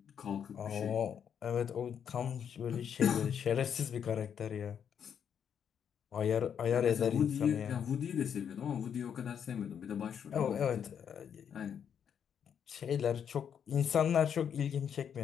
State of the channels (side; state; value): right; quieter; 8.1 dB